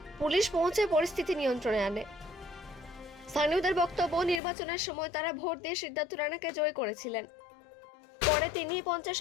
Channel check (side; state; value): right; drops out; at 4.4 s